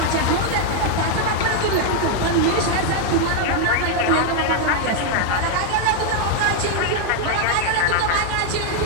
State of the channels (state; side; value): different; both; correlation 0.00